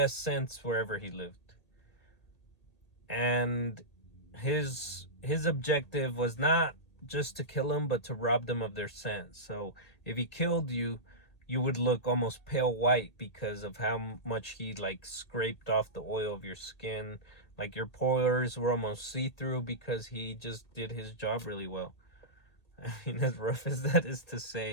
sense wherever he lived. And his objective was not just to kill them, but to rob them of their sense. So if he killed you, you would look almost pale white because of how much he like scraped off the oil of your skin. Like your pores were almost see-through because he just did his job really well. I mean, as rough as that is to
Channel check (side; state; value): right; late; 1.8 ms